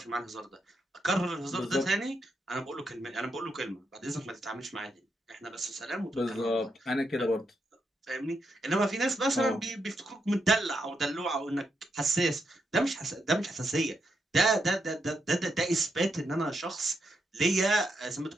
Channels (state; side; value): normal; both; correlation 0.81